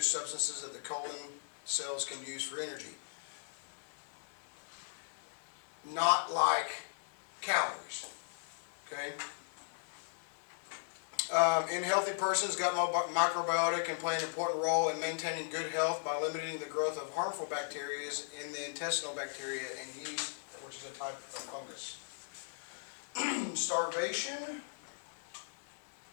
substances that the colon cells can use for energy. Not like calories. Okay. In healthy persons, gut microbiota can play an important role in maintaining good health by limiting the growth of harmful bacteria in the intestinal bacteria and yeast, which is a type of fungus. Starvation,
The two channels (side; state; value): right; silent; digital silence